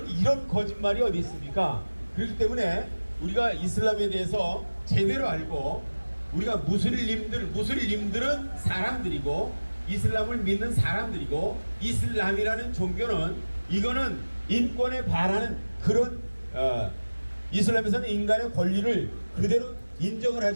이런 거짓말이 어디 있습니까? 그렇기 때문에 우리가 이슬람에 대해서 제대로 알고, 우리가 무슬림들은 사람들이고 이슬람을 믿는 사람들이고, 이슬람이라는 종교는 이거는 인권에 반하는 그런 이슬람에서는 인간의 권리를 그대로 인정을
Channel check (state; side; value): inverted; both; correlation -1.00